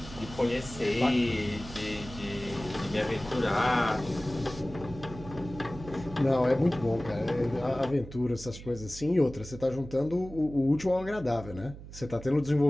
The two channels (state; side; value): noise; right; hum, 14 dB below the sound